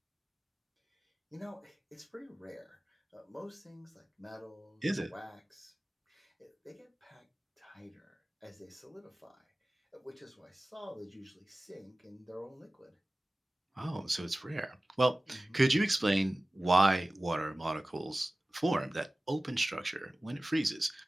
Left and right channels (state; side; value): normal; both; correlation 0.97